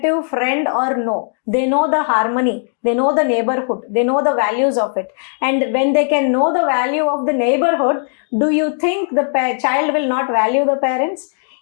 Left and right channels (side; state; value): right; silent; digital silence